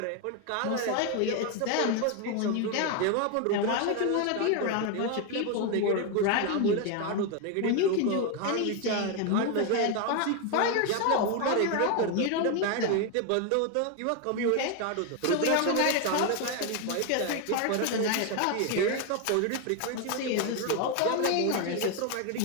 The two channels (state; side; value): different; both; correlation 0.01